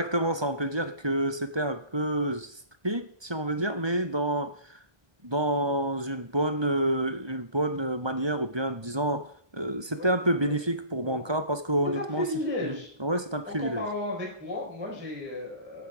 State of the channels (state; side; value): late; left; 1.2 ms